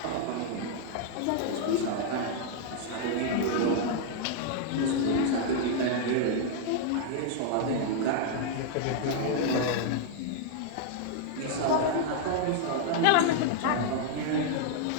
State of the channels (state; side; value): different; both; correlation 0.00